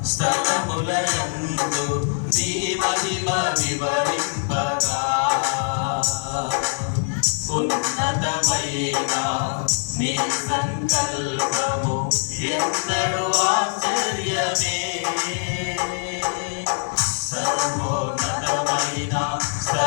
స్థలములయందు నీ మహిమ వివరింపగా ఉన్నతమైన నీ సంకల్పము ఎంతడు ఆశ్చర్యమే. సర్వోన్నతమైన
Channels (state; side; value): silent; right; 63 dB below the other